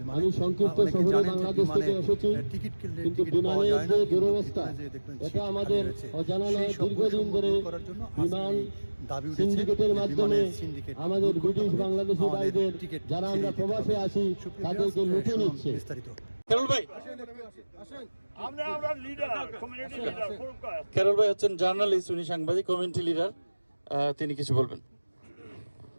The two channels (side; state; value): both; inverted; correlation -1.00